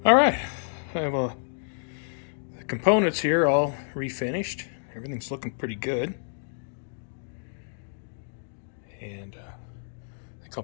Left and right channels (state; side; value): silent; right; digital silence